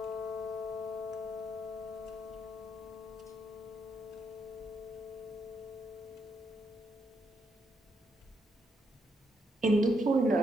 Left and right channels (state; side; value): normal; both; correlation 0.78